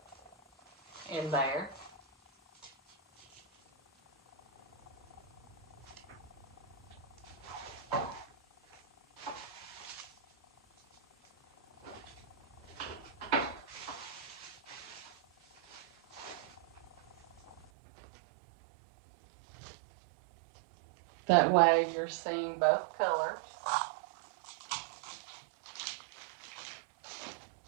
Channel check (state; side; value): drops out; left; at 17.7 s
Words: in there. That way you're seeing both colors.